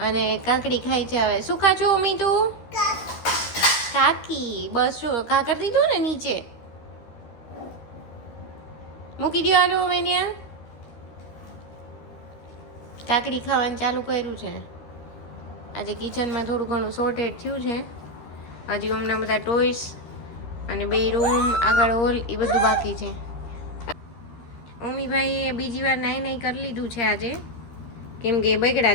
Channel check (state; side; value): late; right; 13 ms